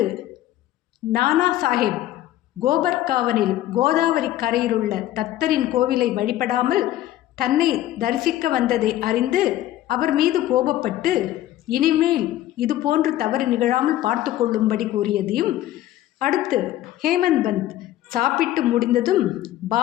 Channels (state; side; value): quieter; right; 13.8 dB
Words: நானா சாஹேப் கோபர்காவனில் கோதாவரி கரையிலுள்ள தத்தரின் கோவிலை வழிபடாமல் தன்னை தரிசிக்க வந்ததை அறிந்து அவர் மீது கோபப்பட்டு இனிமேல் இது போன்று தவறு நிகழாமல் பார்த்து கொள்ளும்படி கூறியதையும், அடுத்து ஹேமந்த் பந்த் சாப்பிட்டு முடிந்ததும்